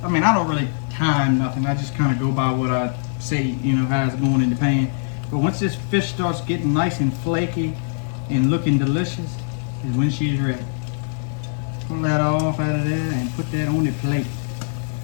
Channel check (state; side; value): silent; right; digital silence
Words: I don't really time nothing. I just kind of go by what I see, how it's going in the pan. But once this fish starts getting nice and flaky and looking delicious, is when she's ready. Pull that off out of there and put that on the plate.